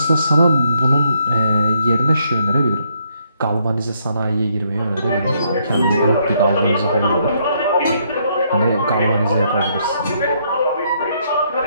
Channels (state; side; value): inverted; both; correlation -0.72